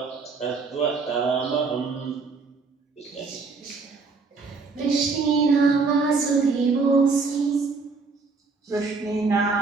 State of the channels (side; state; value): left; quieter; 4.4 dB